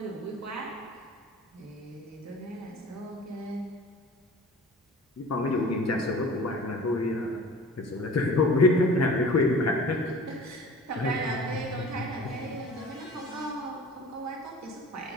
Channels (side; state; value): both; normal; correlation 0.43